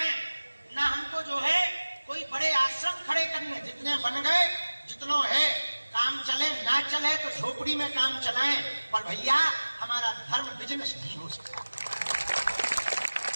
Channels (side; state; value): both; inverted; correlation -1.00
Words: ना हमको जो है कोई बड़े आश्रम खड़े करने। जितने बन गए, जितनों है, काम चले ना चले तो झोपड़ी में काम चलाएं, पर भैया हमारा धर्म बिजनेस नहीं हो सकता।